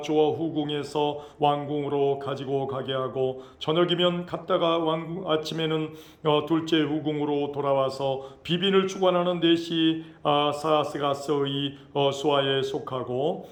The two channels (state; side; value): identical; both; correlation 1.00